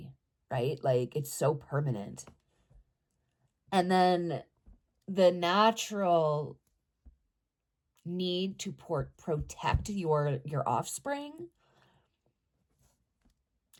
right? Like it's so permanent. And then the natural need to protect your offspring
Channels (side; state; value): both; identical; correlation 1.00